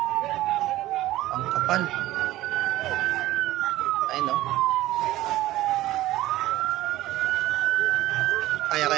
Ang kapal. Ay, no?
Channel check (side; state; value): left; quieter; 15.9 dB